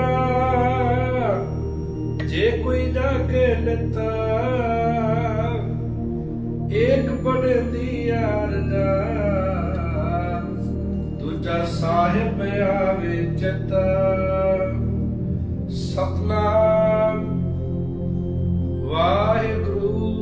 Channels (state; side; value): identical; both; correlation 1.00